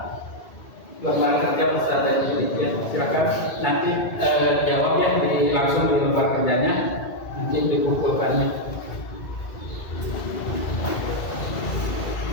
lembar kerja peserta ya. Silakan nanti jawab ya langsung di lembar kerjanya, nanti dikumpulkannya.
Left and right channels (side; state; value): right; late; 2.3 ms